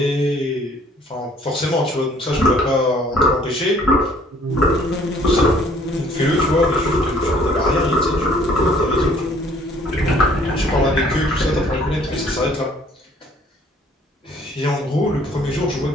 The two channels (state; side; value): normal; both; correlation 0.58